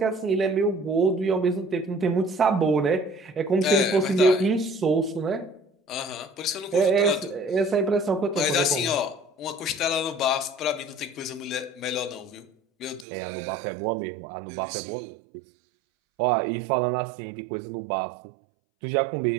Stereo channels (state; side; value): drops out; left; at 13.1 s